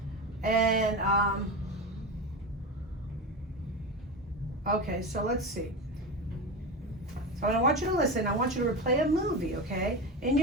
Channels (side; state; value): both; normal; correlation 0.22